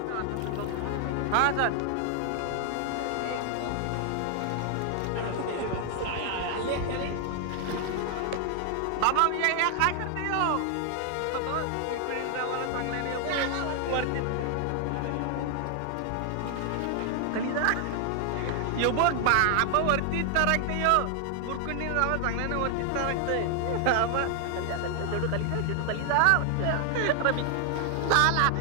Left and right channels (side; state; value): both; different; correlation 0.00